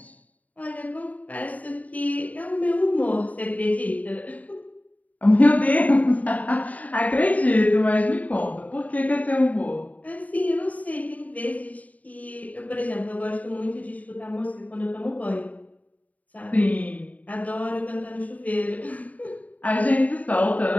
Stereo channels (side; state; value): right; late; 0.072 ms